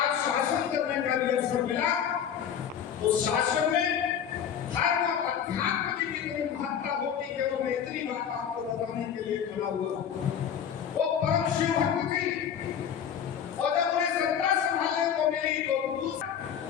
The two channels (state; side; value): quieter; right; 8.4 dB